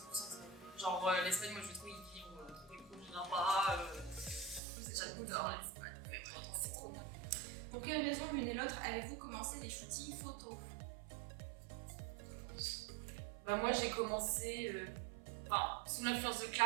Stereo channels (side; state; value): left; drops out; at 4.6 s